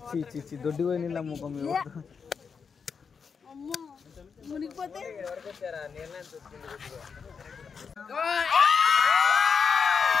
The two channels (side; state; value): right; quieter; 5.9 dB